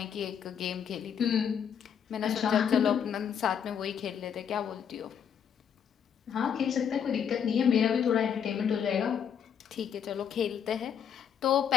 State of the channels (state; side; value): quieter; right; 8.0 dB